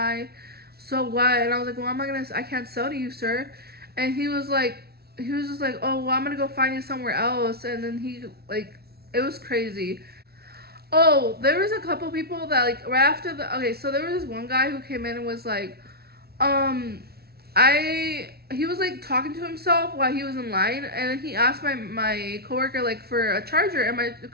so what? And I was like, well, I can't sell to you, sir. And he was just like, oh, well, I'm gonna go find you somewhere else. And then it was crazy. Oh, there was a couple people that like right after okay, so there was this one guy who came in and was like, um, he was like talking to himself while he was in line, and then he asked my coworker like for a charger, and my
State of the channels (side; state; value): left; late; 0.45 ms